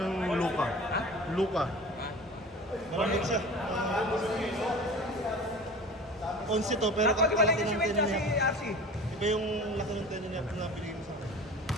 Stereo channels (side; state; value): both; normal; correlation 0.38